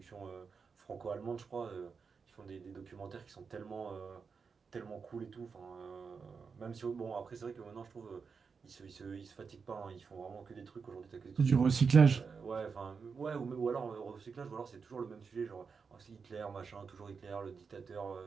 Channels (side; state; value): left; quieter; 5.4 dB